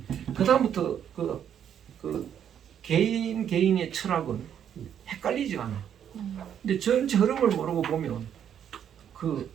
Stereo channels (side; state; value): left; quieter; 9.1 dB